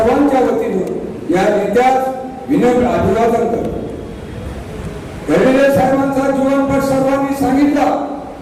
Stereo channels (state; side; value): identical; both; correlation 1.00